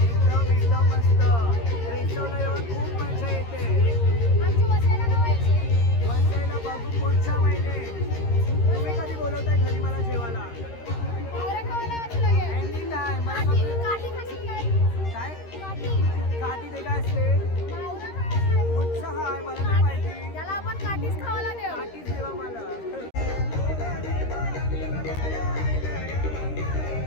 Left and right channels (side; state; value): right; late; 13 ms